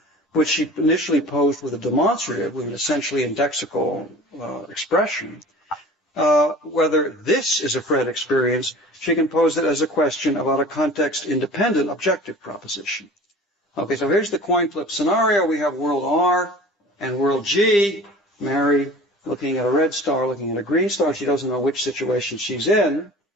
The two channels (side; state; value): both; normal; correlation 0.42